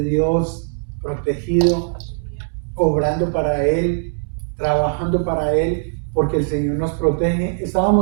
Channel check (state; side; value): silent; left; digital silence